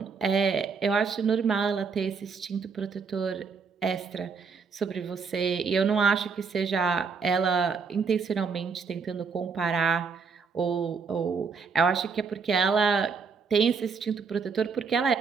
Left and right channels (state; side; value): quieter; left; 5.4 dB